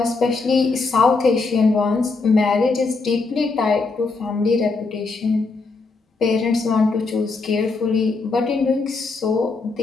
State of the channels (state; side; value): quieter; right; 4.0 dB